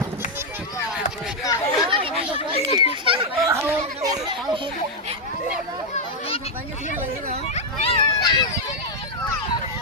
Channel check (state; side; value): normal; both; correlation 0.00